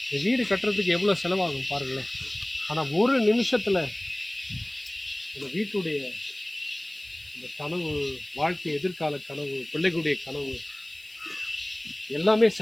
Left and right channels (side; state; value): left; noise; hiss, 25 dB below the sound